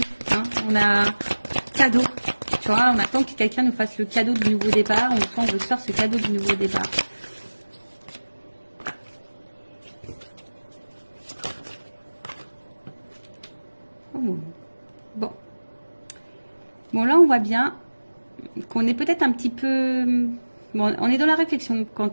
Hein. cadeau. Tu vois, on attend que quelqu'un nous fasse le cadeau du nouveau départ. On veut se faire ce cadeau du nouveau départ. Oh. Bon. Bon, là, on voit bien qu'on est peut-être un petit peu... Bon, on est dans la réflexion quant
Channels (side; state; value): both; inverted; correlation -1.00